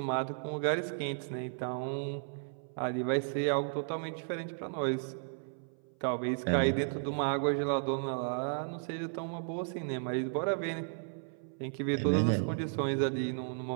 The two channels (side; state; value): left; silent; 55 dB below the other